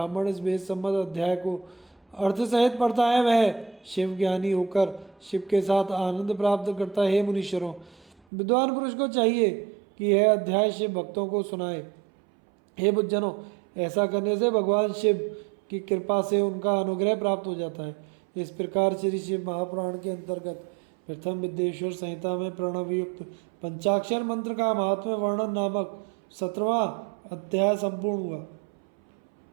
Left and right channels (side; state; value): left; drops out; at 8.1 s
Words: इस वेद संबद्ध अध्याय को अर्थ सहित पढ़ता है वह शिव ज्ञानी होकर शिव के साथ आनंद प्राप्त करता है। हे मुनीश्वरों, विद्वान पुरुष को चाहिए कि यह अध्याय शिव भक्तों को सुनाए। हे बुद्धजनों, ऐसा करने से भगवान शिव की कृपा से उनका अनुग्रह प्राप्त हो जाता है। इस प्रकार श्री शिव महापुराण के अंतर्गत प्रथम विद्येश्वर संहिता में प्रणवयुक्त पंचाक्षर मंत्र का महात्म्य वर्णन नामक 17वां अध्याय संपूर्ण हुआ।